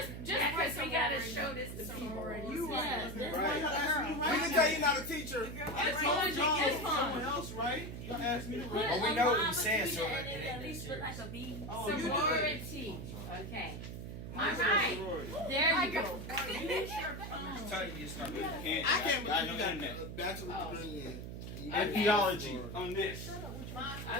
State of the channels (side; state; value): right; noise; hum, 8 dB below the sound